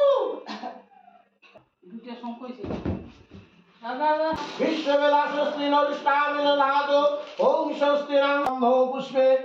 দুইটা সংকোইছে বিশ্ববিলাসস্তি নরিষ্টামিনাদ ওম স্বস্তিরাম্ভো পুষ্পে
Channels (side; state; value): both; identical; correlation 1.00